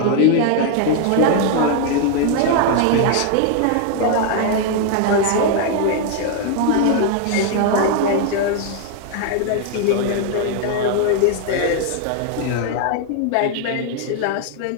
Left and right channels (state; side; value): different; both; correlation 0.00